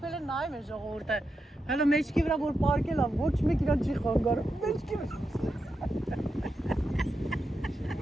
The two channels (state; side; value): normal; both; correlation 0.87